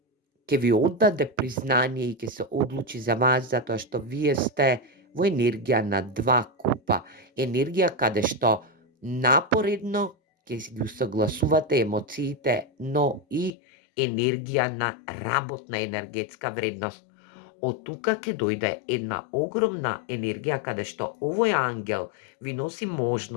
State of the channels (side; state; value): right; drops out; at 13.5 s